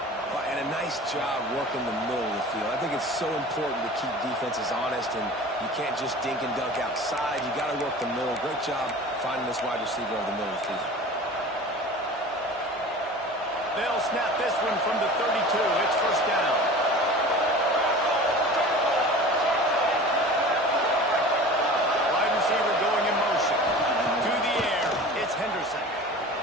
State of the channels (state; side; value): normal; both; correlation 0.39